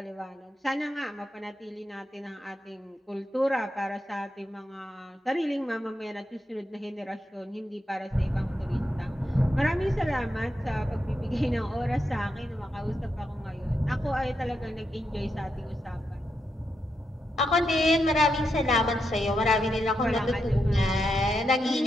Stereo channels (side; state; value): both; normal; correlation 0.84